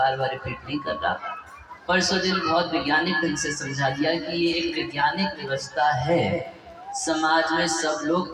बार रिपीट नहीं कर रहा। परसों दिन बहुत वैज्ञानिक ढंग से समझा दिया कि ये एक वैज्ञानिक व्यवस्था है। समाज में सब लोग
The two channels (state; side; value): identical; both; correlation 1.00